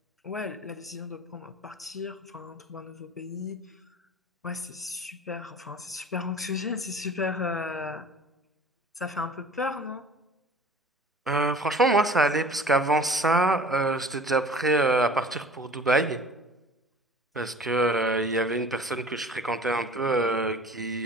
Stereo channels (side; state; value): both; normal; correlation 0.44